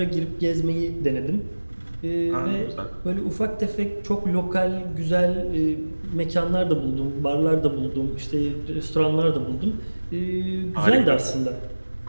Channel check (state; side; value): inverted; both; correlation -1.00